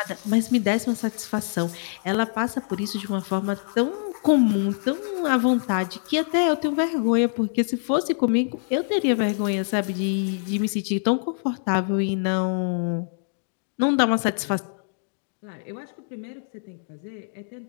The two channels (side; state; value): right; silent; digital silence